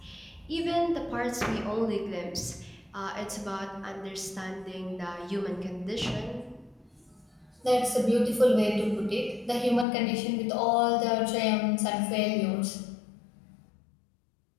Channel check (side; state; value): right; drops out; at 9.9 s